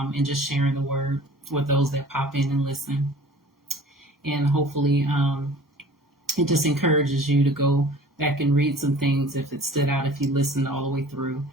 just sharing the word with those that pop in and listen. And hopefully it just encourages you to go back and read some things if it stood out, if you listened all the way through.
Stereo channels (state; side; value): normal; both; correlation 0.46